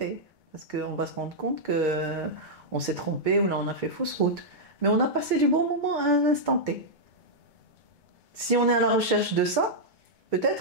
Parce qu'on va se rendre compte qu'on s'est trompé ou là on a fait fausse route. Mais on a passé du bon moment à un instant T. Si on est à la recherche de ça,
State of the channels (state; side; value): late; left; 2.2 ms